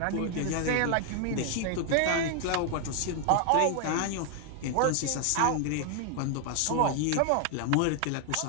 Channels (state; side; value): different; both; correlation 0.00